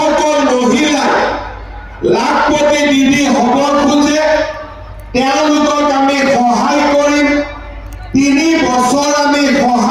মহিলা লাখপতি দিদি হ'ব খোজে তেওঁলোকক আমি সহায় কৰিম। 3 বছৰ আমি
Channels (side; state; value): both; identical; correlation 1.00